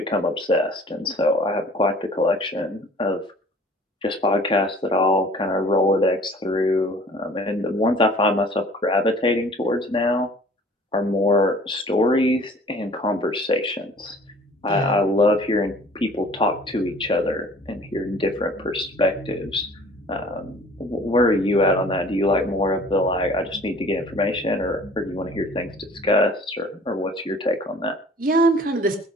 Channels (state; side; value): normal; both; correlation 0.50